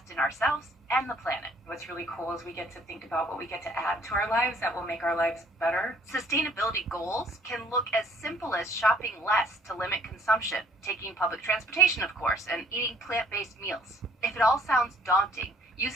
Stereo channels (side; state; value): both; normal; correlation 0.60